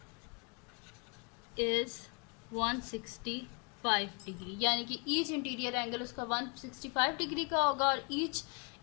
is 165 degree, यानी कि ईच इंटीरियर एंगल उसका 165 डिग्री का होगा और ईच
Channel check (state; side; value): quieter; right; 34.7 dB